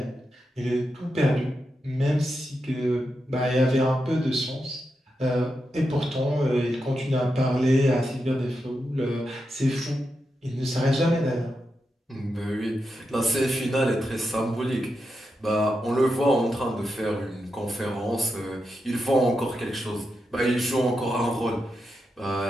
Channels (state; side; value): normal; both; correlation 0.87